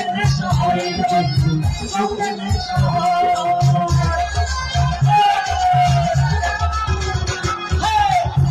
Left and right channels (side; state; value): both; identical; correlation 1.00